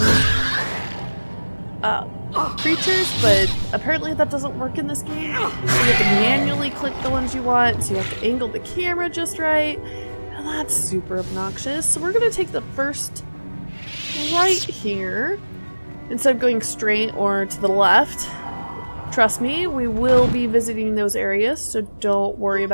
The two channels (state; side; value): inverted; both; correlation -1.00